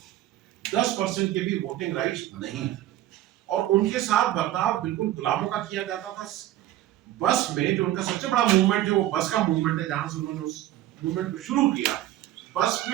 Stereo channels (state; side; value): quieter; left; 13.9 dB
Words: 10% के भी वोटिंग राइट्स नहीं थे, और उनके साथ बर्ताव बिल्कुल गुलामों का किया जाता था। बस में जो उनका सबसे बड़ा मूवमेंट है वो बस का मूवमेंट है, जहां से उन्होंने उस मूवमेंट को शुरू किया। बस